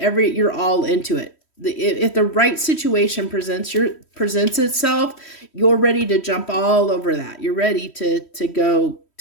all into it. If the right situation presents itself, you're ready to jump all over that. You're ready to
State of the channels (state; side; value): late; right; 3.1 ms